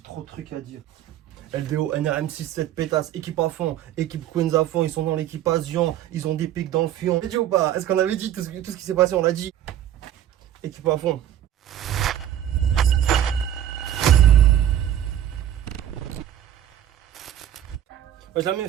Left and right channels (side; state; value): left; quieter; 11.2 dB